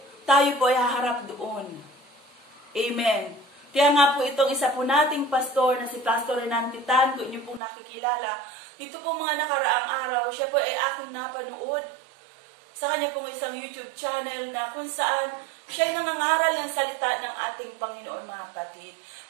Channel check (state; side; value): drops out; left; at 7.6 s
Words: tayo po ay haharap doon. Amen. Kaya nga po itong isa po nating pastor na si Pastor Renan Titan, kung inyo pong nakikilala, dito po mga nakaraang araw, siya po ay aking napanood sa kanya pong isang YouTube channel na kung saan siya ay nangangaral ng salita ng ating Panginoon, mga kapatid.